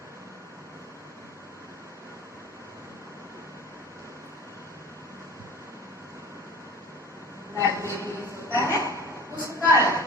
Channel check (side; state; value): both; normal; correlation 0.41